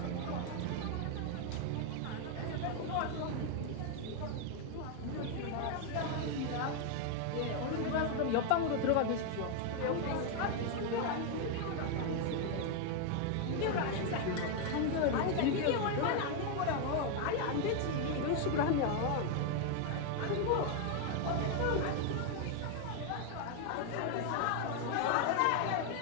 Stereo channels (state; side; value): different; both; correlation 0.01